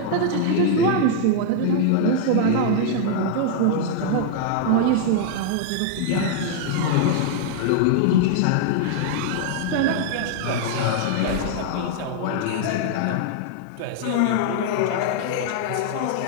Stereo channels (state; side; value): different; both; correlation -0.01